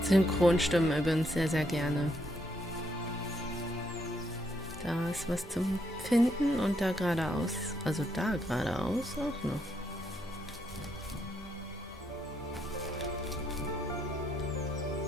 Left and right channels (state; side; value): normal; both; correlation 0.76